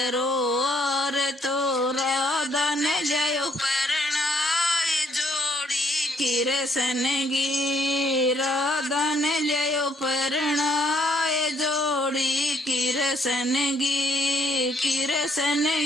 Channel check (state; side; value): normal; both; correlation 0.69